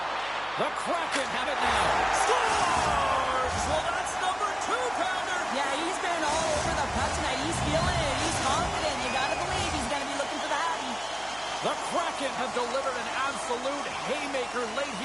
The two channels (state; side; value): noise; right; hum, 22 dB below the sound